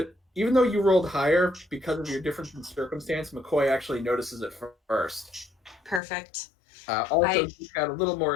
even though you rolled higher because of your difference in circumstance, McCoy actually notices it first. Perfect. Also, you've got a little more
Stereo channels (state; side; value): drops out; right; at 6.0 s